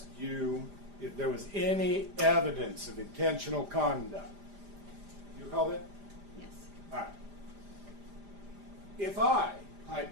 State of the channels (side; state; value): left; late; 5.0 ms